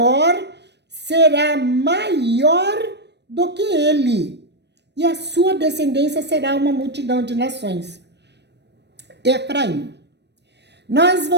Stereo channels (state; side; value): late; left; 0.50 ms